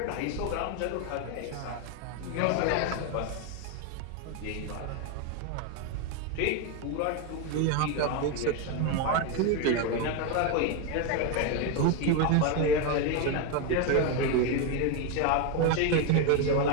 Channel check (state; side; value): different; both; correlation 0.02